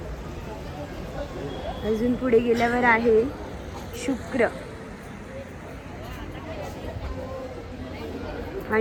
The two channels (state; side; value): identical; both; correlation 1.00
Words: अजून पुढे गेल्यावर आहे शुक्र